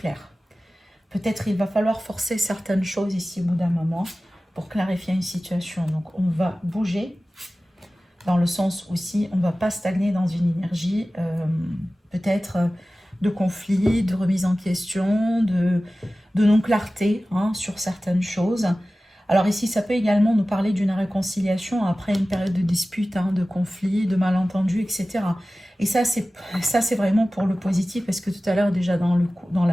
Peut-être il va falloir forcer certaines choses ici au bout d'un moment pour clarifier une situation. Donc on va bouger dans le sens aussi, on ne va pas stagner dans une énergie peut-être de conflit, de remise en question, de non-clarté, hein, sur certaines choses. Alors ici, ça peut également nous parler d'une réconciliation après une période de dispute, hein, de conflit, de malentendu, etc. Et ça, c'est vraiment pour le positif, parce que tout à l'heure, déjà dans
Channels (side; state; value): both; normal; correlation 0.96